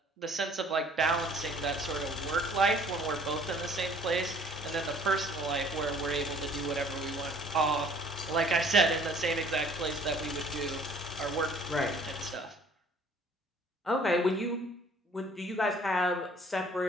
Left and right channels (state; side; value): normal; both; correlation 0.55